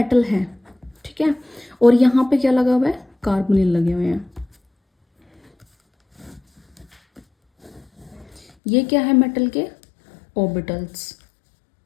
है, ठीक है, और यहाँ पे क्या लगा हुआ है, कार्बोनिल लगे हुए हैं। ये क्या है, मेटल के ऑर्बिटल्स।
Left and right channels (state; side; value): drops out; right; at 8.5 s